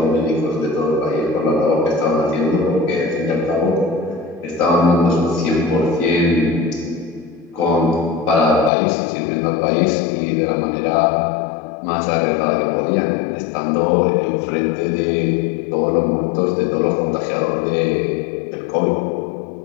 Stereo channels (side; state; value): right; drops out; at 8.7 s